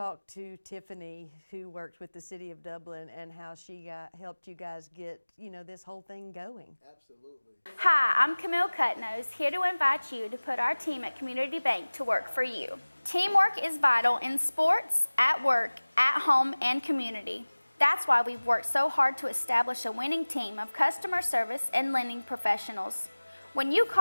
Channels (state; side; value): inverted; both; correlation -1.00